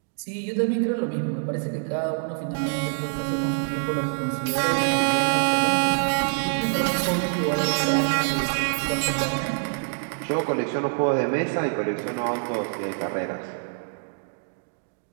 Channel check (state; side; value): silent; left; digital silence